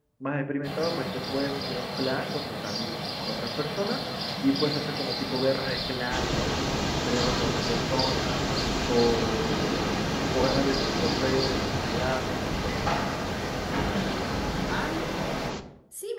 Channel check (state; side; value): identical; both; correlation 1.00